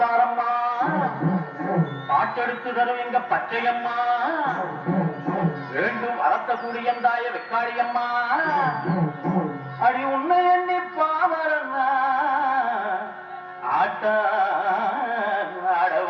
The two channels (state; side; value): identical; both; correlation 1.00